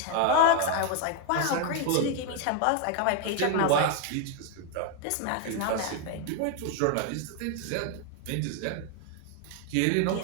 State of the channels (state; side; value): different; both; correlation 0.01